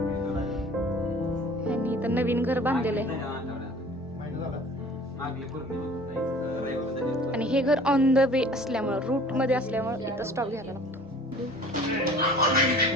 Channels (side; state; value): both; normal; correlation 0.47